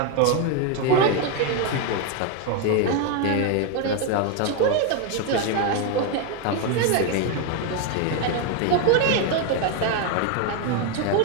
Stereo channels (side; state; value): both; different; correlation 0.02